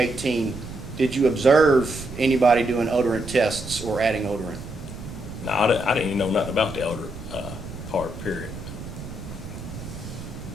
did you observe anybody doing odorant tests or adding odorant? No, I didn't even know nothing about the odor part, period.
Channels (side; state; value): right; noise; rumble, 11 dB below the sound